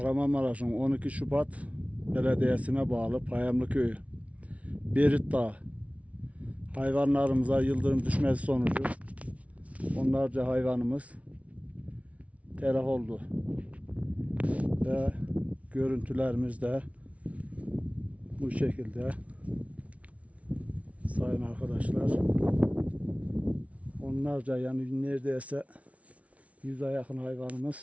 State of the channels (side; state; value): left; late; 0.065 ms